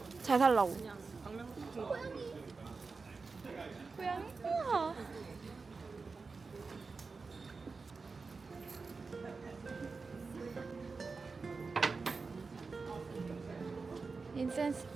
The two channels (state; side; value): quieter; left; 4.4 dB